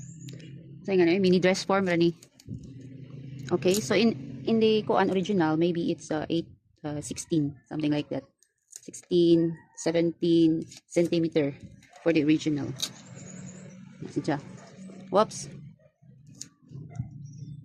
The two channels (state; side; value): identical; both; correlation 1.00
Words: mini dress form rani. Okay, so in the kuan original, maybe it's 16, something like that. 16, 17 centimeter for the original. Si Ja. Whoops.